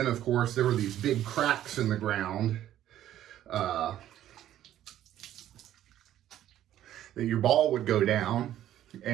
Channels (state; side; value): quieter; left; 12.3 dB